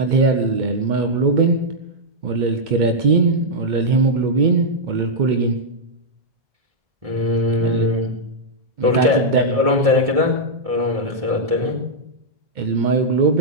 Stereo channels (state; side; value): late; left; 1.6 ms